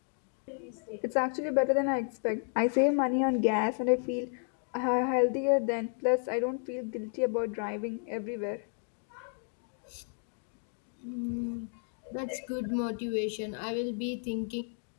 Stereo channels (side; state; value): right; silent; 56 dB below the other